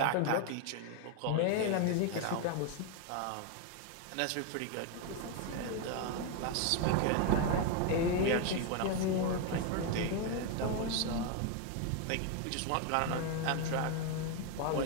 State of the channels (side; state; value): both; different; correlation 0.01